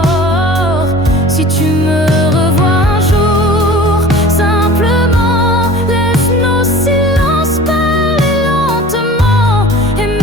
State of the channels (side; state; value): both; normal; correlation 0.42